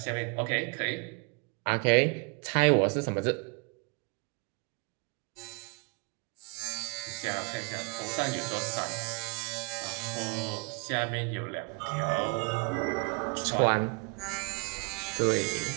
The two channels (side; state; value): left; quieter; 32.2 dB